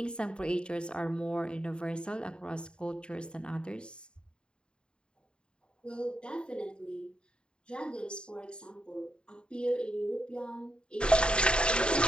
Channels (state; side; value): late; right; 0.051 ms